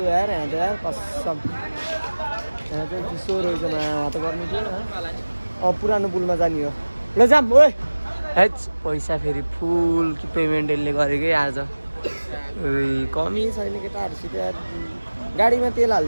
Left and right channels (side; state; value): both; inverted; correlation -1.00